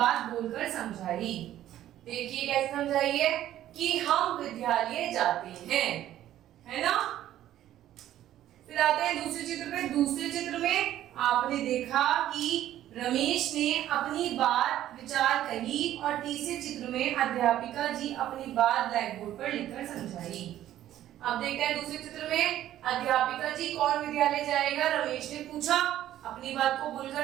बोलकर समझाई। देखिए कैसे समझाई है कि हम विद्यालय जाते हैं, है ना। फिर आते हैं दूसरे चित्र पे। दूसरे चित्र में आपने देखा कि रमेश ने अपनी बात विचार कही और तीसरे चित्र में अध्यापिका जी अपनी बात ब्लैक बोर्ड पर लिखकर समझाई। अब देखते हैं दूसरे चित्र में अध्यापिका जी कौन विद्यालय जाएगा, रमेश ने पूछा, अपनी बात को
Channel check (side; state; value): left; quieter; 12.6 dB